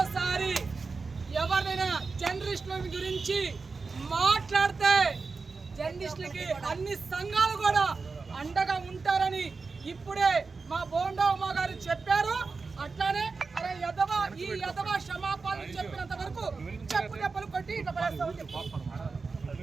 ఎవరైనా జర్నలిస్టుల గురించి మాట్లాడితే జర్నలిస్టులకి అన్ని సంఘాలు కూడా అండగా ఉంటారని ఇప్పుడే మా బోండా ఉమా గారు చెప్పారు. అట్లానే అరే యదవా ఈ యదవా క్షమాపణలు చెప్పినంత వరకు చెప్పు దెబ్బలు కొట్టి ఇట్లా పడేస్తామని చెప్పారు.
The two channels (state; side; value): quieter; left; 4.4 dB